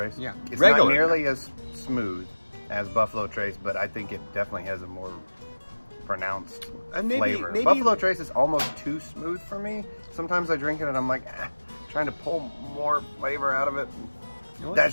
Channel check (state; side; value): inverted; both; correlation -1.00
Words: Yeah. It's not nearly as smooth as Buffalo Trace, but I think it definitely has a more pronounced flavor. Maybe Buffalo Trace is almost too smooth for me. Sometimes I drink it and I'm like, trying to pull more flavor out of it. You know,